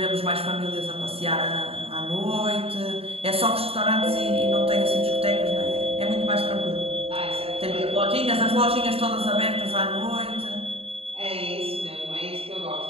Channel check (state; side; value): late; left; 0.28 ms